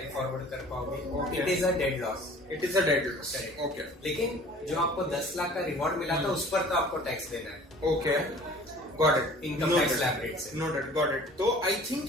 फॉरवर्ड कर पाओगे। It is a dead loss. It is a dead loss, okay. लेकिन जो आपको 10 लाख का रिवॉर्ड मिला था उस पर तो आपको टैक्स देना है। Okay, got it. Income tax slab rate से। Noted, got it. तो आई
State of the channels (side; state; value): both; normal; correlation 0.48